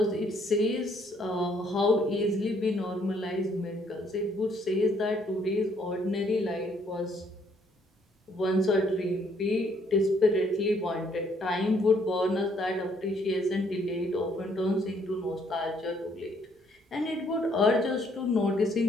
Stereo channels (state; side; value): normal; both; correlation 0.67